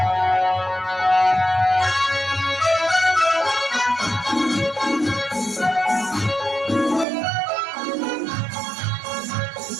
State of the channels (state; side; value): drops out; left; at 7.1 s